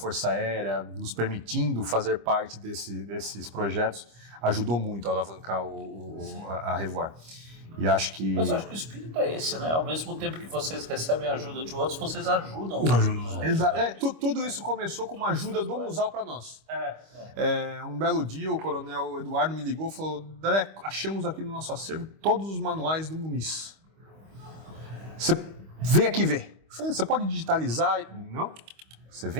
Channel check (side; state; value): left; late; 25 ms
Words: Aérea, nos permitindo fazer parte desses projetos, ajudou muito a alavancar a Revoar. E acho que... Mas eu acho que o espírito é esse, né? Ao mesmo tempo que vocês recebem ajuda de outros, vocês ajudam. Tudo isso começou com uma ajuda do Museu para nós. Um belo dia, o coronel Eduardo me ligou e falou, Daré, achamos aqui no nosso acervo todos os manuais do Muniz. Você vem aqui ver. Você pode digitalizar? Não, você